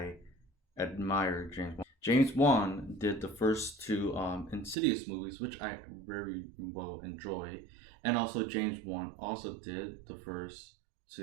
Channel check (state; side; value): drops out; left; at 4.8 s